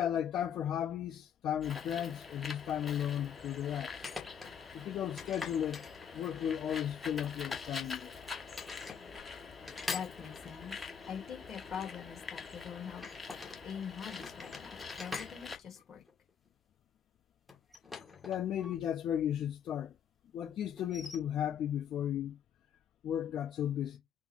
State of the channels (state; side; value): quieter; right; 8.5 dB